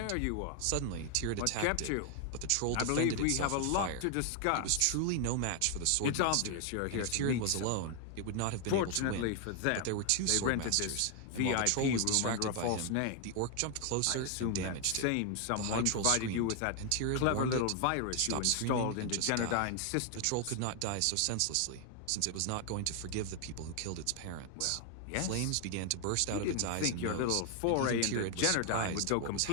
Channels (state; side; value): different; both; correlation 0.00